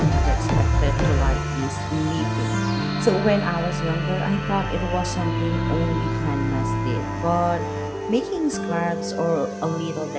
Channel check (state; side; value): identical; both; correlation 1.00